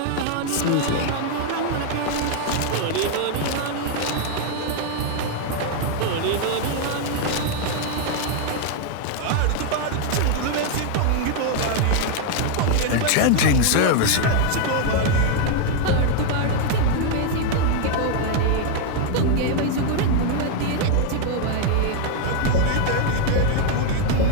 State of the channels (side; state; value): both; different; correlation 0.00